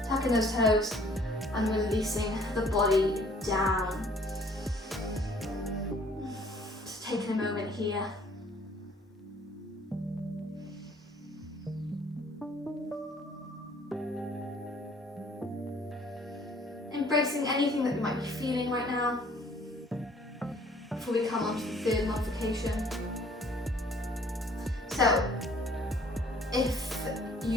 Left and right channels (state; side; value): normal; both; correlation 0.57